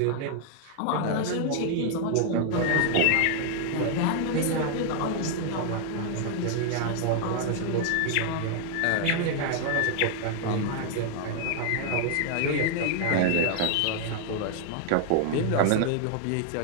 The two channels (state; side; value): different; both; correlation 0.00